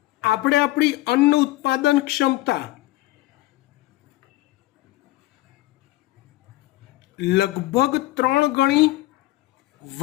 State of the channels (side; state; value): right; quieter; 17.8 dB